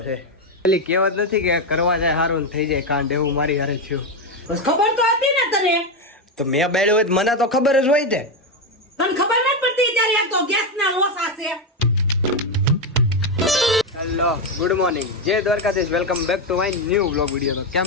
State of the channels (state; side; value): normal; both; correlation 0.08